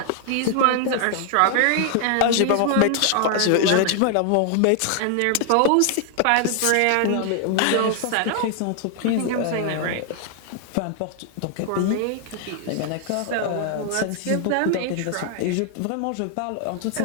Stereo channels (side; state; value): both; different; correlation 0.00